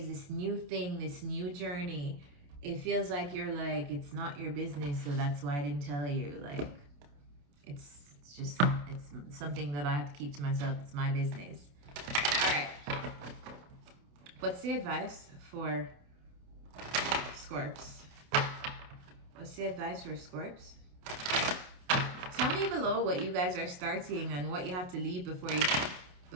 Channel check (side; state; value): left; late; 28 ms